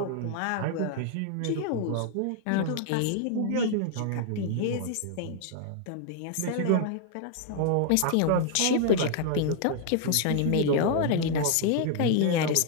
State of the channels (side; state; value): both; different; correlation 0.00